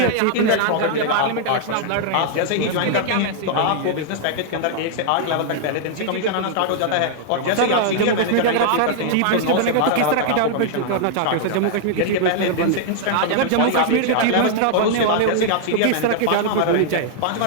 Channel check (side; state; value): both; different; correlation -0.01